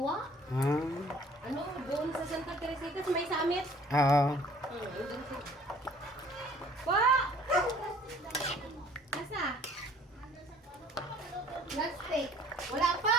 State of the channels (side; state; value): both; normal; correlation 0.54